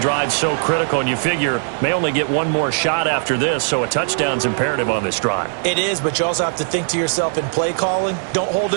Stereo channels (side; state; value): left; silent; digital silence